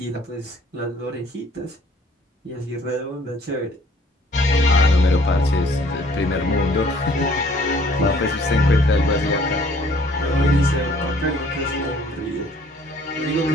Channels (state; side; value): normal; both; correlation 0.58